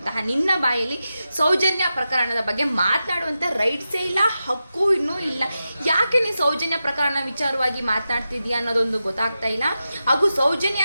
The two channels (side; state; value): both; inverted; correlation -0.91